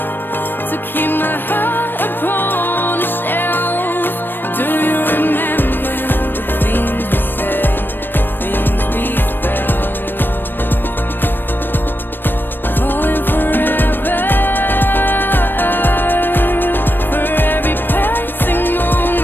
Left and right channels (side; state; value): right; late; 0.095 ms